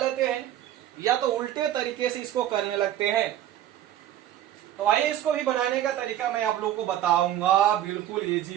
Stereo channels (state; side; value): quieter; left; 12.1 dB